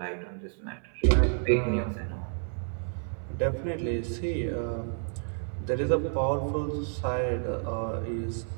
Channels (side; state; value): left; silent; 58 dB below the other